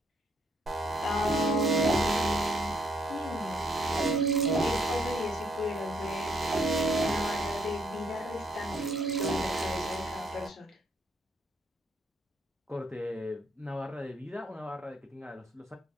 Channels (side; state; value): both; normal; correlation 0.71